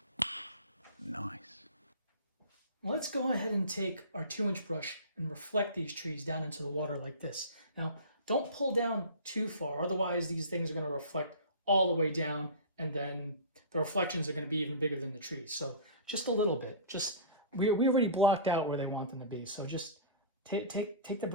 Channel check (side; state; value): both; inverted; correlation -0.36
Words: Nice. Let's go ahead and take our 2-inch brush and reflect these trees down into the water like this. Now, don't pull down too far, otherwise these things are going to reflect all the way down, and then the reflections are going to be even bigger than the trees. So just a little bit. We already blocked out where they want them to be, so just take the